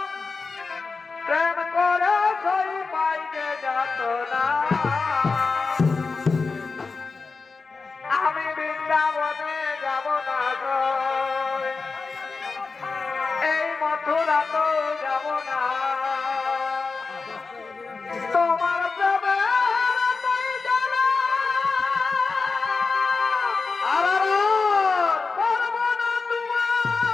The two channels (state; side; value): quieter; right; 4.4 dB